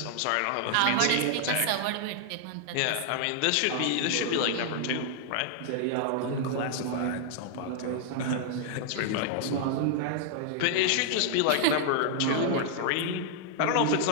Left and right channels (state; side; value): different; both; correlation -0.01